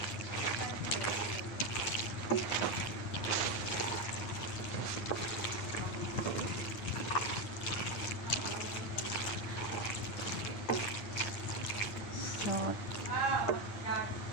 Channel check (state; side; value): late; right; 9.8 ms